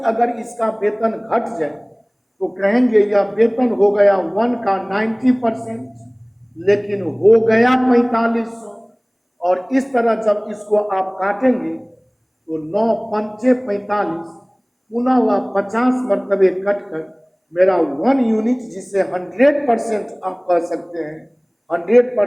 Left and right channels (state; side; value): identical; both; correlation 1.00